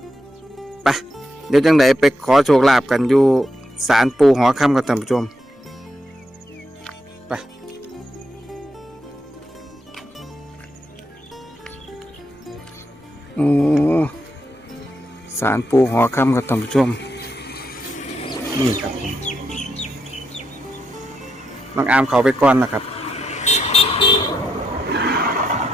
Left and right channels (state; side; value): normal; both; correlation 0.82